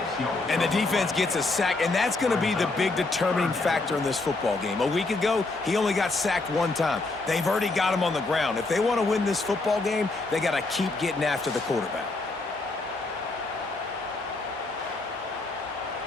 And the defense gets a sack, and that's going to be the big determining factor in this football game. A week ago, he only got sacked one time. They've already got him on the ground. If they want to win this football game, they got to keep getting after the quarterback.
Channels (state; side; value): quieter; right; 3.3 dB